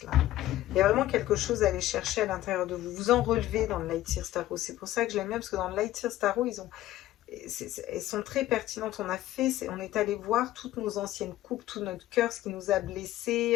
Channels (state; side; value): quieter; right; 14.6 dB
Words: Là. Il y a vraiment quelque chose à aller chercher à l'intérieur de vous. Vous en relevez dans le Lightseers Tarot. C'est pour ça que je l'aime bien, parce que dans le Lightseers Tarot, elles sont très pertinentes. On est allé voir toutes nos anciennes coupes, tout notre cœur, ce qui nous a